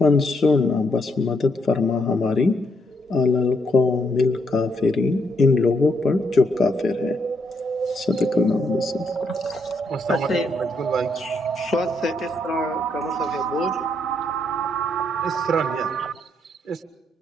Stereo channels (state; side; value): normal; both; correlation 0.75